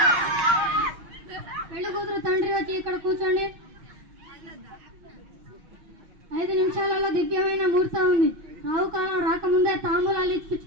పెళ్లి కూతురు తండ్రి వచ్చి ఇక్కడ కూర్చోండి. 5 నిమిషాలలో దివ్యమైన ముహూర్తం ఉంది. రావుకాలం రాకముందే తాంబూలాలు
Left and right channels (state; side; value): late; left; 6.3 ms